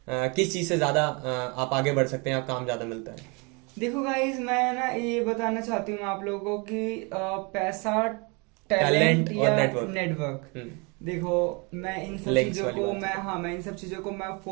किस चीज़ से ज़्यादा आप आगे बढ़ सकते हैं, आप काम ज़्यादा मिलता है। देखो गाइस, मैं ना ये बताना चाहती हूँ आप लोगों को कि पैसा, टैलेंट टैलेंट और या नेटवर्क। नेटवर्क। देखो मैं इन सब Links चीजों वाली को बात है। मैं इन सब चीजों को मैं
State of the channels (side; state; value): left; quieter; 30.7 dB